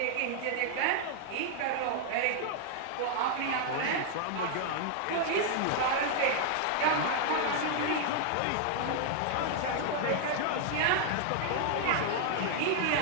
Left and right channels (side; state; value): both; different; correlation 0.00